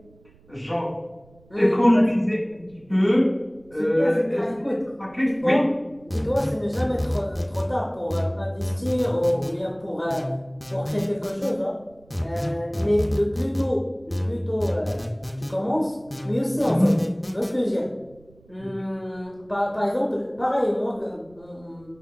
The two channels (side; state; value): right; noise; rumble, 28 dB below the sound